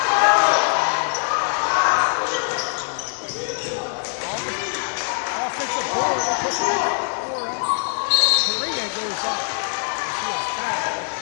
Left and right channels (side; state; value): right; silent; 63 dB below the other